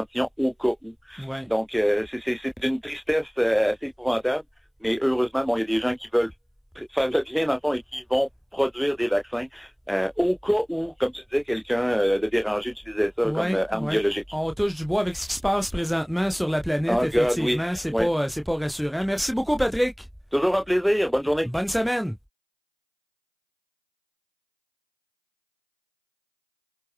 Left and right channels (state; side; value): identical; both; correlation 1.00